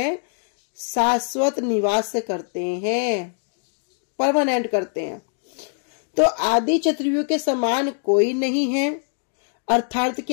शाश्वत निवास करते हैं, परमानेंट करते हैं। तो आदि चतुर्व्यूह के समान कोई नहीं है, अर्थात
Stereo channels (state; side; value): silent; right; digital silence